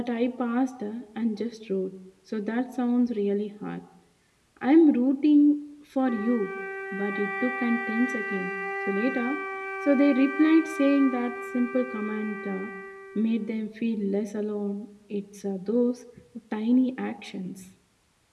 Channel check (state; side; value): identical; both; correlation 1.00